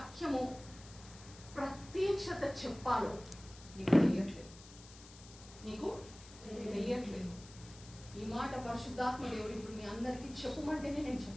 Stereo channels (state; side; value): noise; left; hiss, 19 dB below the sound